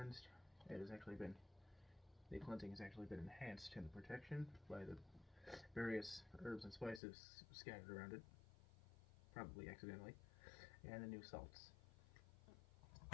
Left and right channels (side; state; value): right; drops out; at 7.0 s